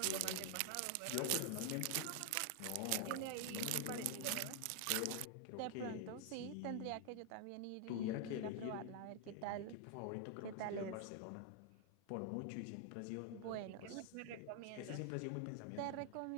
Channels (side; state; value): both; different; correlation 0.00